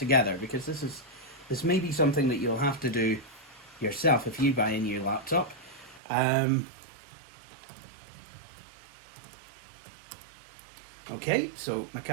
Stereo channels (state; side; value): drops out; left; at 6.0 s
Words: because this may be something that you'll have to do yourself if you buy a new laptop. Okay, so